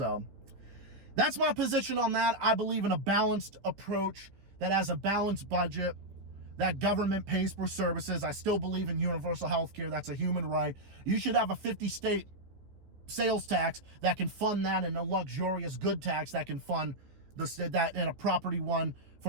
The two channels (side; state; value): left; late; 14 ms